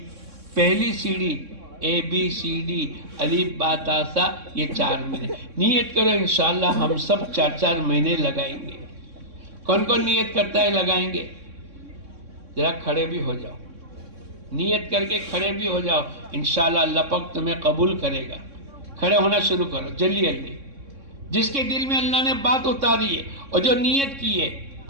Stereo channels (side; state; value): left; late; 3.6 ms